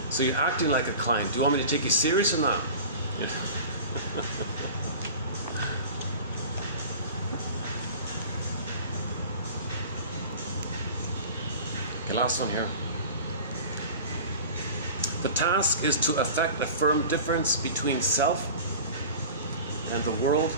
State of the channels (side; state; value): both; inverted; correlation -0.38